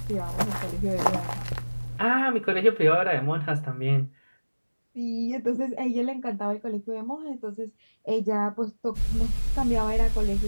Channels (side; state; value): both; inverted; correlation -1.00